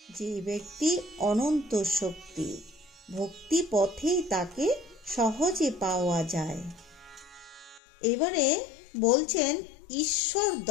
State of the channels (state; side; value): drops out; right; at 7.8 s